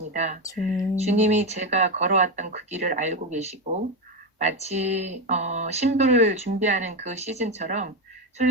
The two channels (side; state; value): both; normal; correlation 0.12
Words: 주님. 주님이 제가 걸어왔던 그 길을 알고 계시고 마치 신부를 준비하는 그 시즌처럼